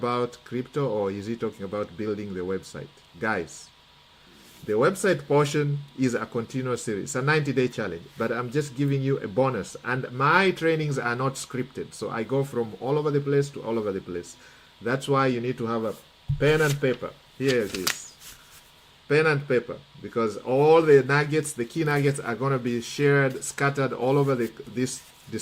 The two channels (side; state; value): both; identical; correlation 1.00